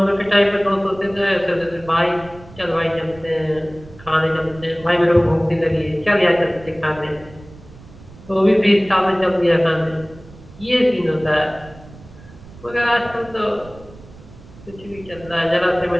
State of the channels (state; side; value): noise; right; rumble, 20 dB below the sound